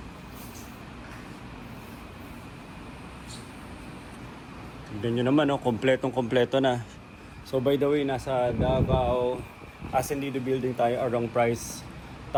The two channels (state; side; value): identical; both; correlation 1.00